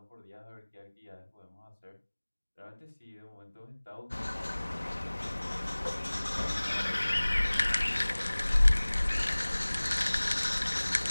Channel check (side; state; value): both; inverted; correlation -1.00